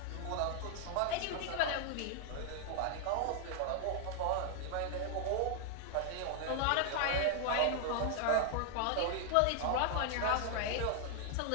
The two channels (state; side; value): different; both; correlation 0.00